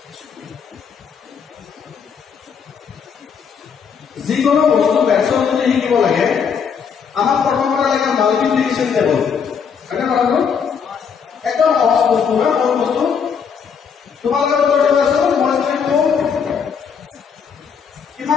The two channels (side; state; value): right; quieter; 6.7 dB